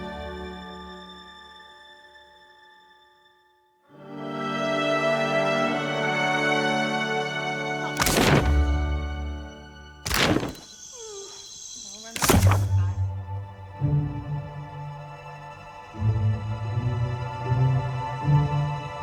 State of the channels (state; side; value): identical; both; correlation 1.00